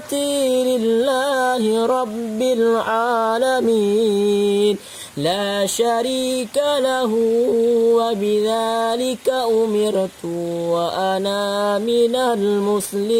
لله رب العالمين لا شريك له وبذلك أمرت وأنا من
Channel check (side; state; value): both; identical; correlation 1.00